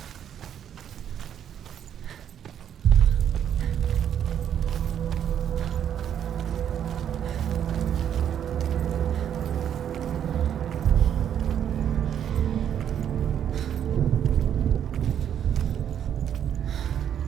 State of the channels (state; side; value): quieter; left; 9.4 dB